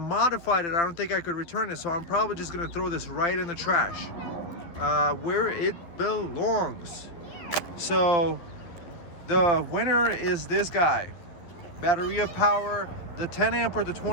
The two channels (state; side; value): late; right; 11 ms